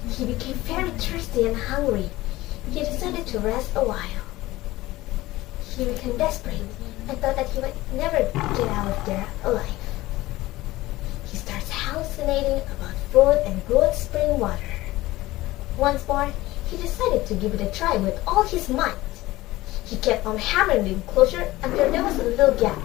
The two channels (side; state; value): right; quieter; 17.9 dB